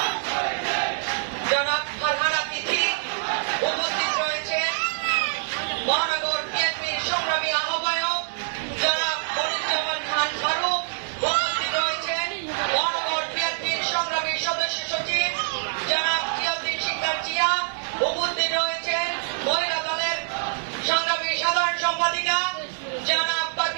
জনাব ফারহানা তিথি, উপস্থিত রয়েছে মহানগর বিএনপির সংগ্রামী আহ্বায়ক জনাব মনিরুজ্জামান খান ফারুক, উপস্থিত রয়েছেন মহানগর বিএনপির সংগ্রামী সদস্য সচিব জনাব জিয়াউদ্দিন শিকদার জিয়া, উপস্থিত রয়েছেন মহিলা দলের সংগ্রামী সাধারণ সম্পাদিকা জনাব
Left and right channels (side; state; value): left; silent; 58 dB below the other